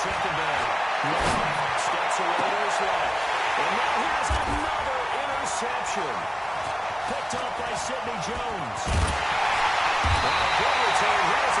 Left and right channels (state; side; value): identical; both; correlation 1.00